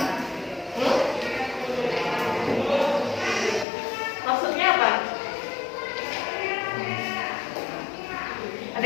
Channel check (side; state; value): right; drops out; at 3.7 s